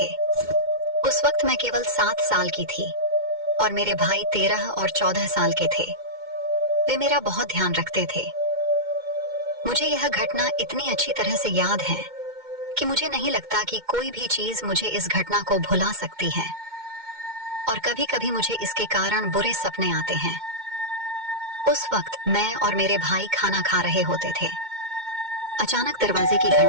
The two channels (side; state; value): left; late; 2.1 ms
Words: उस वक्त मैं केवल 7 साल की थी और मेरे भाई 13 और 14 साल के थे। वे मेरा बहुत ध्यान रखते थे। मुझे यह घटना इतनी अच्छी तरह से याद है कि मुझे नहीं लगता कि कोई भी चीज मुझे इस घटना को भुला सकती है, और कभी कभी मुझे इसके कारण बुरे सपने आते हैं। उस वक्त मैं और मेरे भाई खाना खा रहे होते थे। अचानक दरवाजे की